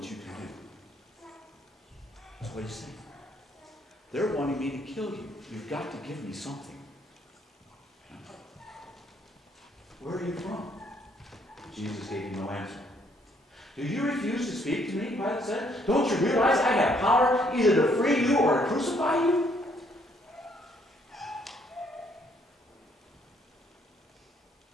you can do. That's what he's saying. They're wanting me to kill you. You've got to give me something. Where are you from? Jesus gave him no answer. "Do you refuse to speak to me?" Pilate said. "Don't you realize I have power either to free you or to crucify you?"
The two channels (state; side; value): normal; both; correlation 0.68